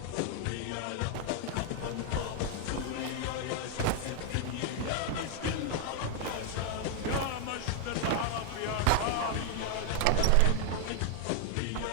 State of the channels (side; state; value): both; different; correlation 0.00